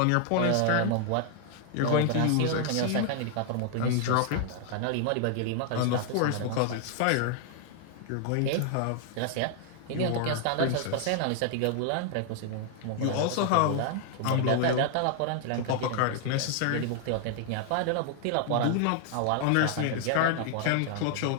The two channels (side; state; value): both; different; correlation 0.00